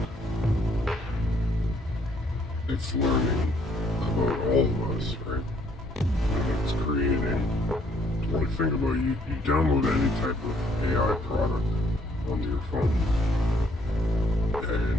It's learning about all of us, right? And it's creating. When you think about it, you download any type of AI product onto your phone,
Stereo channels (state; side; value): normal; both; correlation 0.67